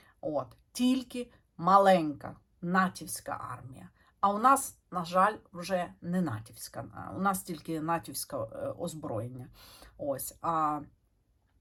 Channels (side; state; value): both; identical; correlation 1.00